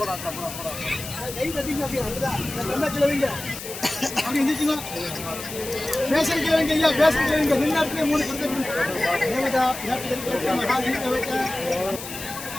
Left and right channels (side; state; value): left; noise; hiss, 10 dB below the sound